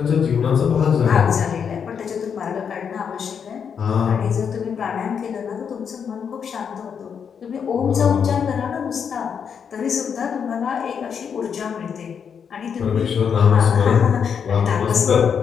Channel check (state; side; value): quieter; right; 7.1 dB